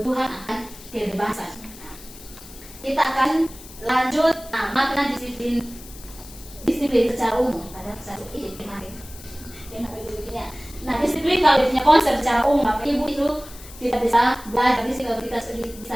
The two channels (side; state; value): left; noise; hiss, 18 dB below the sound